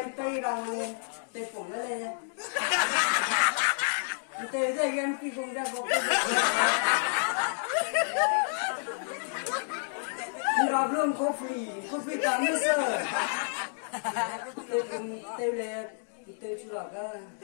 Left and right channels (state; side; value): silent; right; digital silence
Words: tay bằng tay phủng nó lên tay ra em khi cùng ra bộ nó luôn coffee tám mươi sơ tôi cùng tôi lên tôi chú lọc á